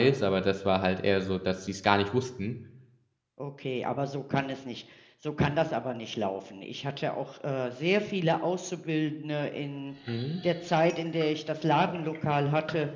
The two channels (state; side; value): identical; both; correlation 1.00